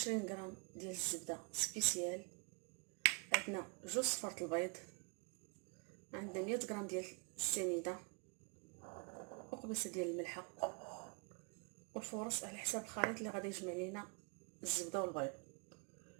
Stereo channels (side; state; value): left; quieter; 35.5 dB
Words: غرام ديال الزبده سبيسيال، عندنا جوج صفارة البيض، عندنا 100 غرام ديال السنيده، وقبيصه ديال الملحه، والفورص على حساب الخليط اللي غادي يجمع لينا الزبده والبيض.